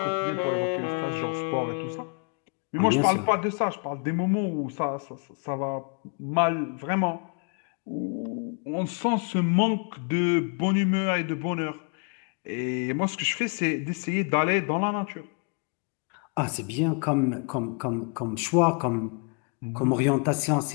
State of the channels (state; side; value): quieter; right; 37.3 dB